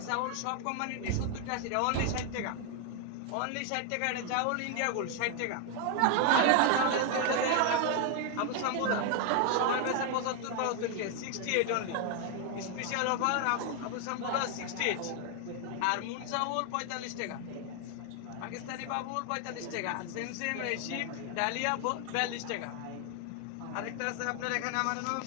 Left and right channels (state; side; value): different; both; correlation 0.01